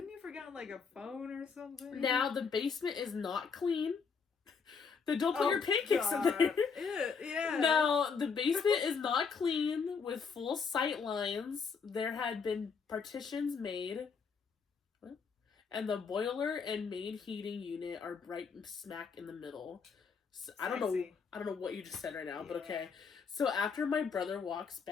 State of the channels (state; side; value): quieter; right; 5.6 dB